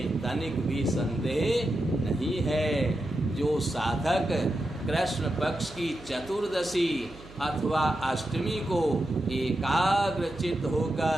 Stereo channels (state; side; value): noise; right; hum, 19 dB below the sound